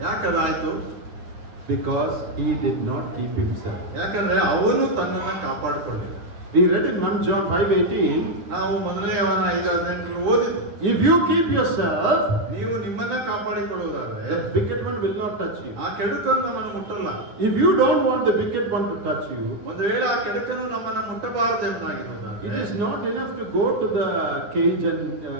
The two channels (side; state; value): left; late; 9.4 ms